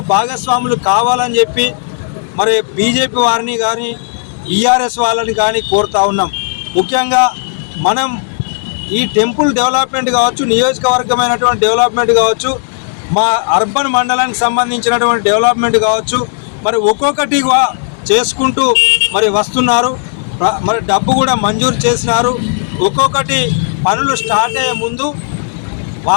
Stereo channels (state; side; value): silent; right; digital silence